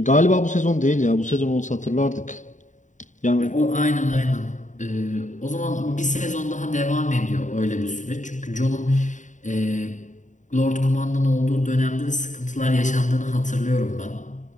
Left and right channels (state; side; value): late; right; 0.36 ms